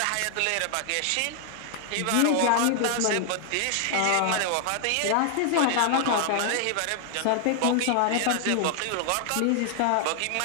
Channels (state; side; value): different; both; correlation 0.00